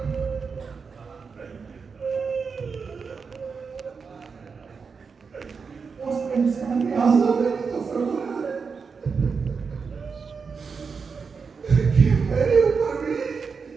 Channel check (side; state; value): left; quieter; 5.4 dB